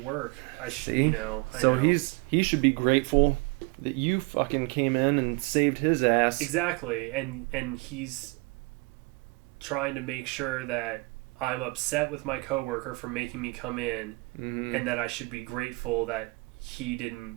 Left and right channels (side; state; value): left; quieter; 26.7 dB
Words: work. See? I so know. he should be grateful that you fucking came in and saved his ass. Exactly, and he's trying to make sure that I'm upset with my coworker for making me come in, Mm-hmm. and that I should be grateful that he didn't